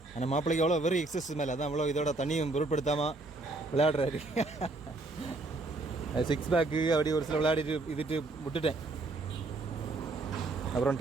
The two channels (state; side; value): quieter; left; 3.1 dB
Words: ஆனால் மாப்பிள்ளைக்கு எவ்வளோ வெறும் எக்ஸசைஸ் மேலே, அதான் அவ்வளோ இதோட தண்ணியும் பொருட்படுத்தாமல் விளையாடுறாரு. சிக்ஸ் பேக்கு அப்படி ஒரு சில விளையாடிட்டு இதுட்டு விட்டுட்டேன். அப்புறம்